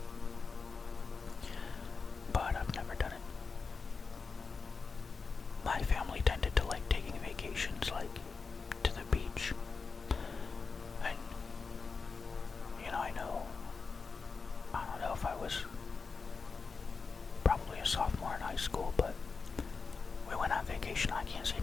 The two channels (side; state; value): right; quieter; 4.8 dB